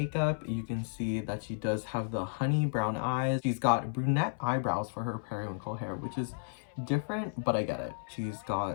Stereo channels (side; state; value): right; silent; 56 dB below the other